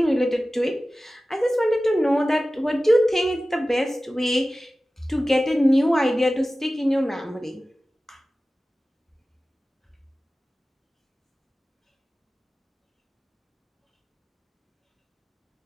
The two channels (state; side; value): normal; both; correlation 0.96